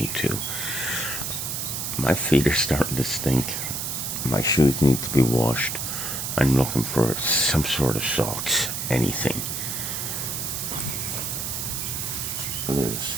My feet are starting to stink. My shoes need to be washed. I'm looking for some sort of socks, anything. Liz,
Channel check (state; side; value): noise; right; hiss, 3 dB below the sound